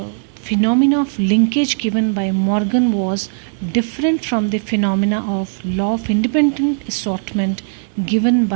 phenomena of linkage given by Morgan was different from the phenomena of law of independent assortment given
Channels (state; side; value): silent; left; 68 dB below the other